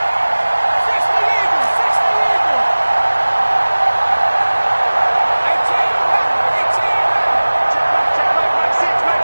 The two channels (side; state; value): both; inverted; correlation -1.00